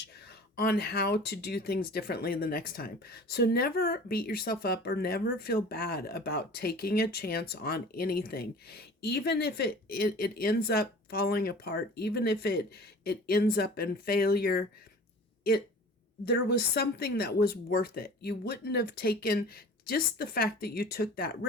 on how to do things differently the next time. So never beat yourself up or never feel bad about taking a chance on anything. Even if it ends up falling apart, even if it ends up in failure, it there was something that was worth it. You wouldn't have taken, just the fact that you took that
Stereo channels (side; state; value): both; normal; correlation 0.43